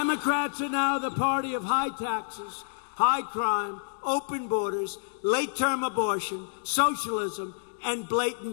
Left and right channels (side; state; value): right; silent; digital silence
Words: are now the party of high taxes, high crime, open borders, late-term abortion, socialism, and